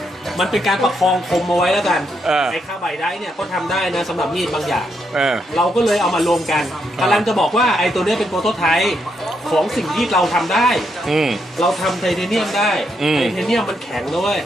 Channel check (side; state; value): both; normal; correlation 0.79